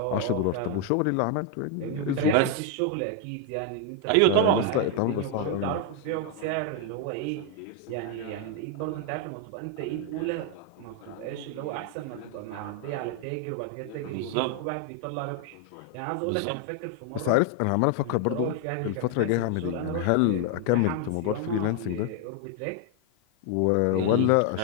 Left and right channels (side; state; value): both; different; correlation 0.01